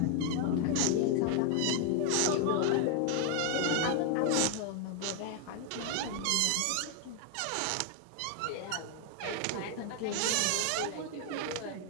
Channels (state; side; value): different; both; correlation 0.01